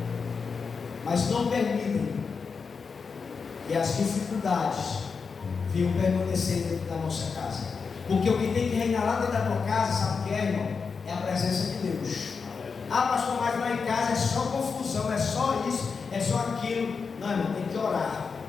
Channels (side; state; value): right; quieter; 5.3 dB